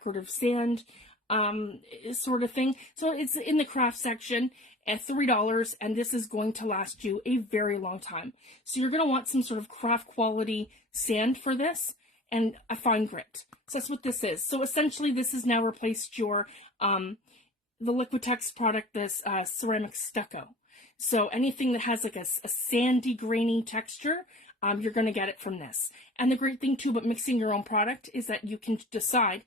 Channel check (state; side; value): normal; both; correlation 0.42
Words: sand sort of thing. So it's in the craft section at $3, and this is going to last you a very long time. So you're going to want some sort of craft quality sand for this and a fine grit. So that's what this is. So essentially this has now replaced your the Liquitex product, this ceramic stucco. So anything that has like a sandy, grainy texture, you're going to get it from this. And the great thing too about mixing your own product is that you can decide